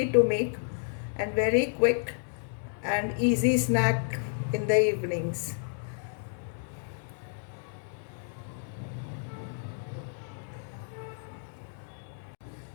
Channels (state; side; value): silent; right; digital silence